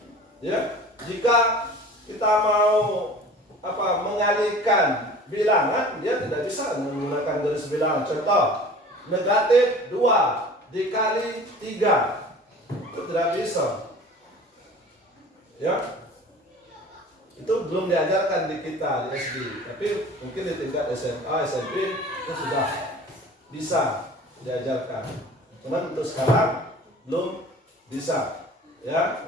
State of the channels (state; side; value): normal; both; correlation 0.43